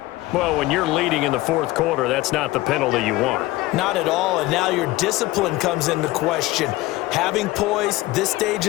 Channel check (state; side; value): quieter; right; 18.3 dB